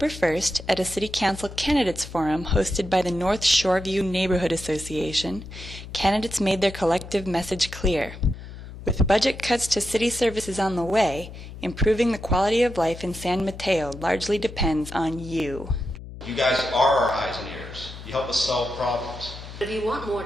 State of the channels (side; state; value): left; noise; hum, 13 dB below the sound